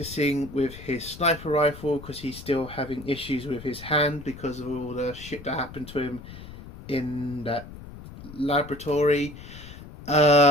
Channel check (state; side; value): noise; left; rumble, 15 dB below the sound